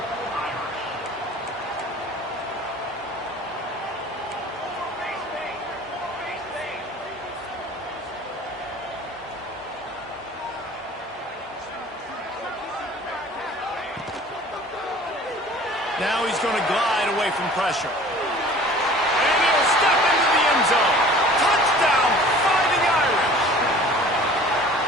Now he's going to glide away from pressure. And he'll step into the end zone. Touchdown, Fighting Irish.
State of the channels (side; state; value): both; normal; correlation 0.47